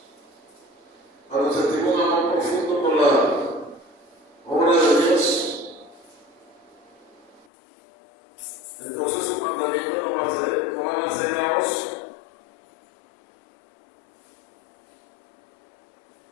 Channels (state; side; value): drops out; right; at 7.5 s